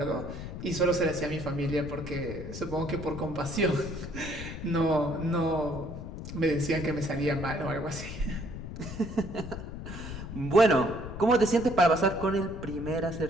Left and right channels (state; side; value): noise; left; rumble, 9 dB below the sound